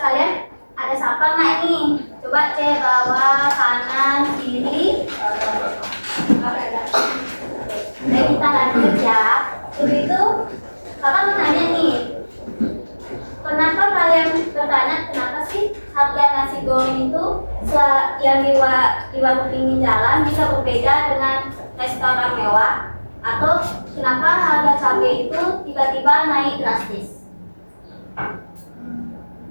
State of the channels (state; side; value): inverted; both; correlation -1.00